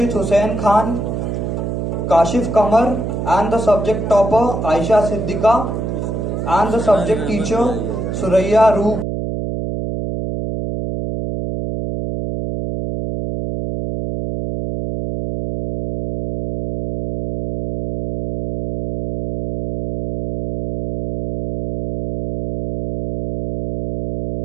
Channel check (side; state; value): right; noise; hum, 4 dB below the sound